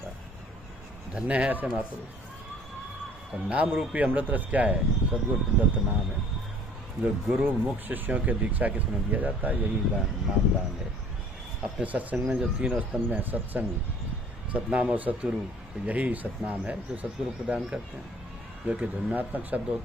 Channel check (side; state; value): both; normal; correlation 0.53